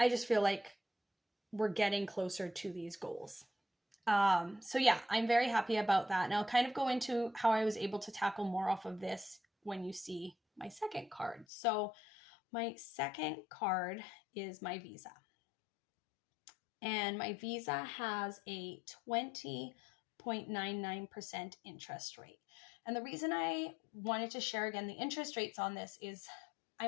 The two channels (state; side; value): drops out; right; at 11.5 s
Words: just feel like we're getting closer to these goals. So yeah, I'm very happy about that. And I'll kind of go into how I was able to tackle more off of this when you see my second card. So my second card is my Visa. And my Visa has a 20.99% interest rate. And the reason I wanted to share again the interest rates on this is